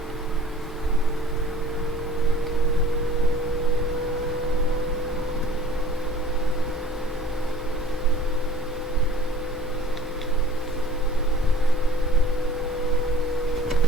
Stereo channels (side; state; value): both; normal; correlation 0.51